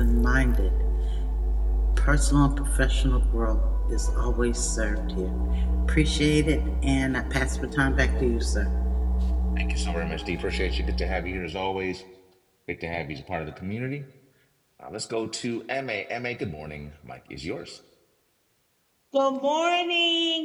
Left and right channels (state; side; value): identical; both; correlation 1.00